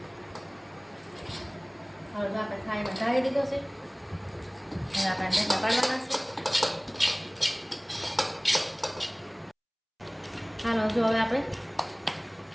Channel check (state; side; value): identical; both; correlation 1.00